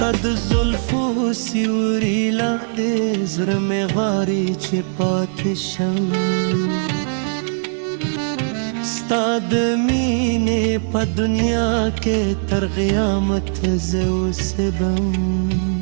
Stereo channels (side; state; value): left; silent; digital silence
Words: د زلفو سیوري لاندې زړه مې غواړي چې پاتې شم ستا د مینې په دنیا کې تر قیامت زه اوسېږم